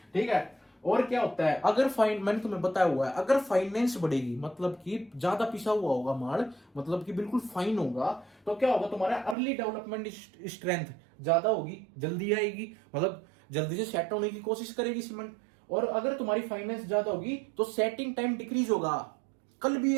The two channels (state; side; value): drops out; left; at 9.3 s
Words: ठीक है। और क्या होता है, अगर मैंने तुम्हें बताया हुआ है, अगर फाइनेंस बढ़ेगी मतलब कि ज्यादा पिसा हुआ होगा माल, मतलब कि बिल्कुल फाइन होगा, तो क्या होगा, तुम्हारा अर्ली डेवलपमेंट स्ट्रेंथ ज्यादा होगी, जल्दी आएगी, मतलब जल्दी से सेट होने की कोशिश करेगी सीमेंट। और अगर तुम्हारी फाइनेंस ज्यादा होगी तो सेटिंग टाइम डिक्रीज होगा। कल भी